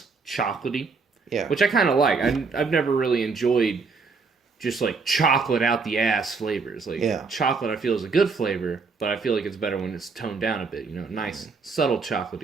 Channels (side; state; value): left; quieter; 4.6 dB